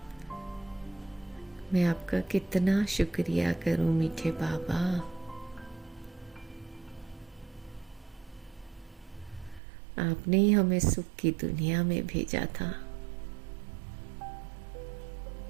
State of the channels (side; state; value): left; drops out; at 9.6 s